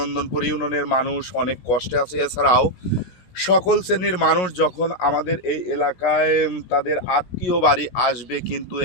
ইউনিয়নের মানুষ অনেক কষ্টে আছে। এছাড়াও সকল শ্রেণীর মানুষ যখন আমাদের এই এলাকায় তাদের আত্মীয় বাড়ি আসবে, কিন্তু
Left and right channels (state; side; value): late; right; 16 ms